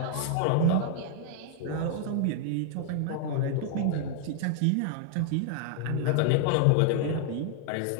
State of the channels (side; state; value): both; different; correlation 0.00